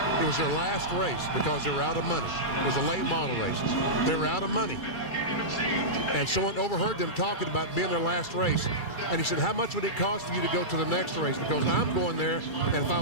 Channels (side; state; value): right; late; 2.3 ms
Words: It was their last race because they were out of money. It was a late model race. They were out of money. And someone overheard them talking about being their last race. And he said, how much would it cost for you to go to the next race? Because I'm going there, and if I